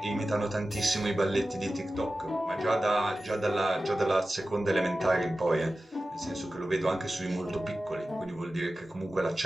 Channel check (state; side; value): normal; both; correlation 0.94